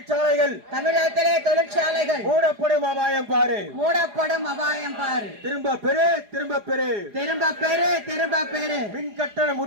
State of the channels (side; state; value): left; late; 4.9 ms